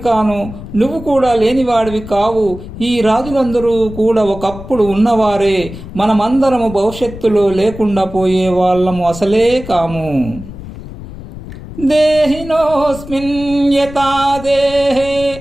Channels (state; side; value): noise; left; rumble, 13 dB below the sound